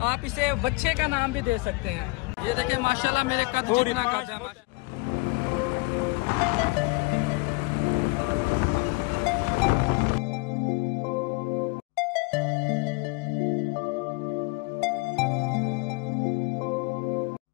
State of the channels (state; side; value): quieter; right; 26.2 dB